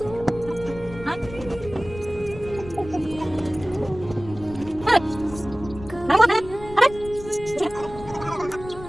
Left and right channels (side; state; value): left; noise; rumble, 14 dB below the sound